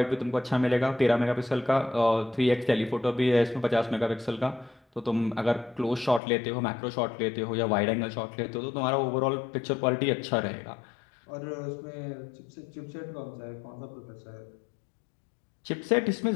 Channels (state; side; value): drops out; right; at 6.2 s